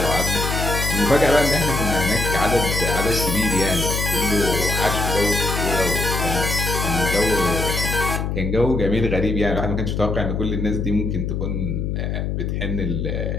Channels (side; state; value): left; noise; hum, 1 dB below the sound